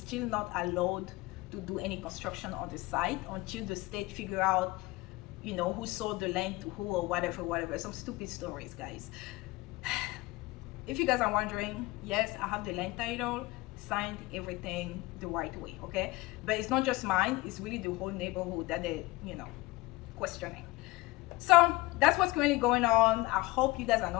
not allowed to do any construction on the site until the state figure out, you know, who sold the land to who or whatever. Some stupid stories, guys. If you guys are wondering, yes, I have the land title, signed everything the right way, okay? But it's not just mine, it's really the whole neighborhood that they, you know, questioning. So that's what's currently going on. I hope you guys are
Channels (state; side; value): quieter; right; 21.0 dB